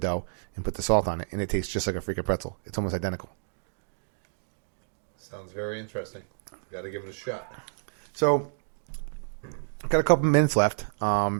and put the salt on it. And it tastes just like a freaking pretzel. It's almost identical. Sounds very interesting. Got to give it a shot. So, got a couple minutes left.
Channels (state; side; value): silent; left; digital silence